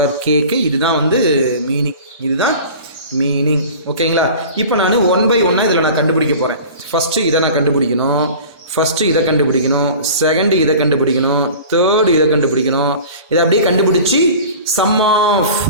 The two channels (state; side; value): inverted; both; correlation -0.39